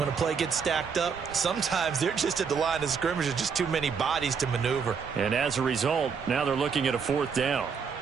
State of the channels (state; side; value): quieter; left; 6.1 dB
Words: a play gets stacked up. Sometimes they're just at the line of scrimmage. There's just too many bodies to maneuver. And as a result, now they're looking at a 4th down.